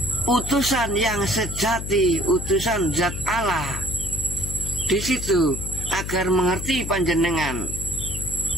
utusan yang sejati, utusan zat Allah. Di situ agar mengerti panjenengan,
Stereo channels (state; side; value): noise; left; hum, 6 dB below the sound